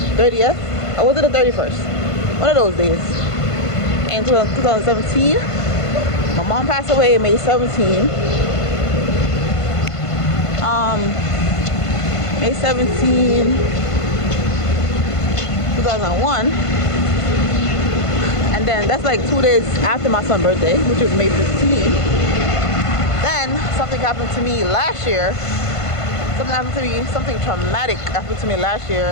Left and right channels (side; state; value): right; late; 1.5 ms